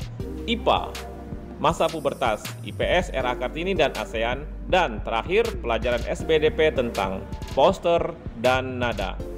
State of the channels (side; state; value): both; identical; correlation 1.00